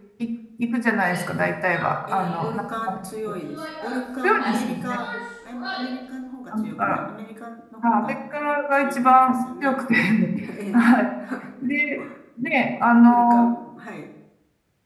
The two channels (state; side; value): identical; both; correlation 1.00